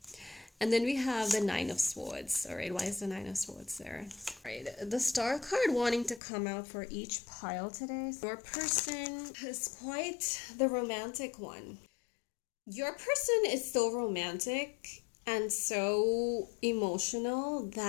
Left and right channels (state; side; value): drops out; right; at 6.2 s